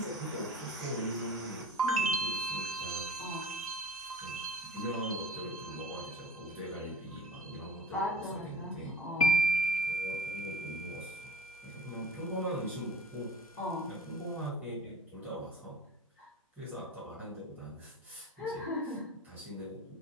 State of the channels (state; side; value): normal; both; correlation 0.40